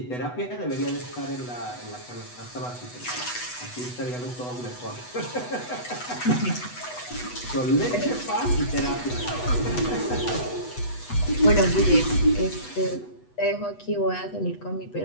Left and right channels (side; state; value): right; late; 8.1 ms